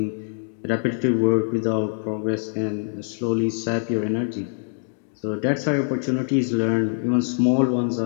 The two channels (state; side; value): silent; right; 58 dB below the other